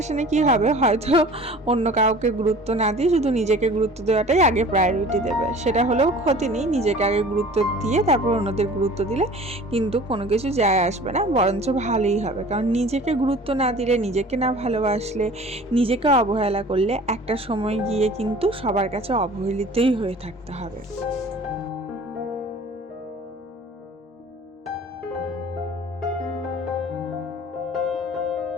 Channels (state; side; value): normal; both; correlation 0.45